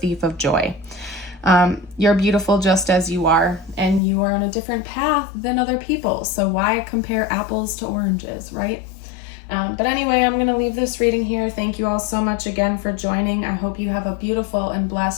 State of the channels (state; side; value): drops out; right; at 4.0 s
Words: of joy. You're beautiful just as you are, and you are on a different path than other people. So why compare apples to oranges, right? But anyway, I'm going to leave this reading here. Thank you all so much again for joining. I hope you have a beautiful and